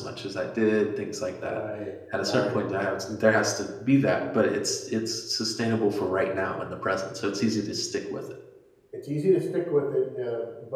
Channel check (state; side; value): identical; both; correlation 1.00